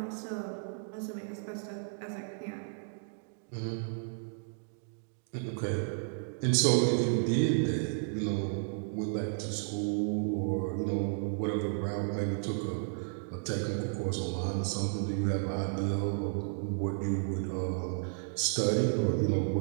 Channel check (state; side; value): silent; left; digital silence